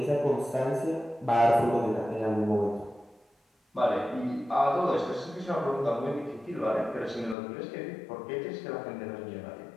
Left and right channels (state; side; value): drops out; right; at 7.4 s